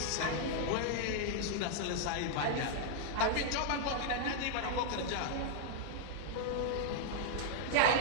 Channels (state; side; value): different; both; correlation -0.01